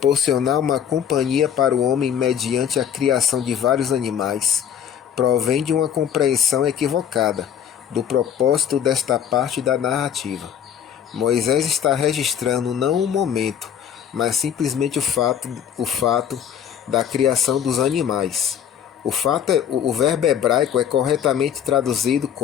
uma companhia para o homem mediante a criação de vários animais, provém de uma compreensão equivocada do propósito desta parte da narrativa. Moisés está registrando não o momento, mas simplesmente o fato da criação dos animais. O verbo hebraico é corretamente traduzido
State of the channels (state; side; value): quieter; right; 9.0 dB